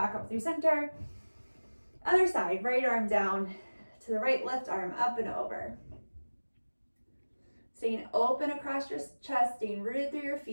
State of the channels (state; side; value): inverted; both; correlation -1.00